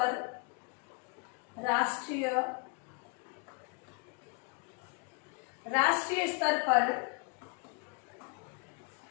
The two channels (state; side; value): quieter; right; 33.3 dB